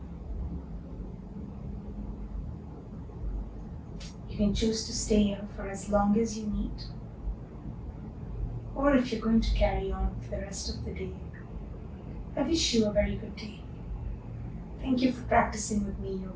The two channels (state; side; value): identical; both; correlation 1.00